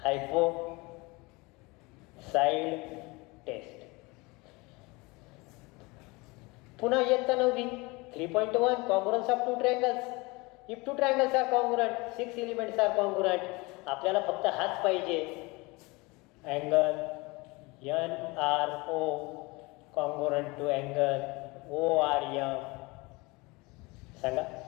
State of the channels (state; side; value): quieter; right; 25.0 dB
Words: हायपो साइड टेस्ट. पुन्हा इयत्ता 9वी 3.1 congruence of 2 triangles. If 2 triangles are congruent 6 elements are congruent. आपल्याला फक्त हाच पाहिजे. Angle NRO congruent to angle ORM. सांगा.